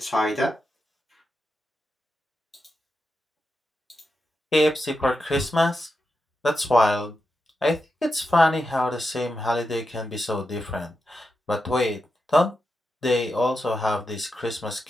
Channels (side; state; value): both; normal; correlation 0.88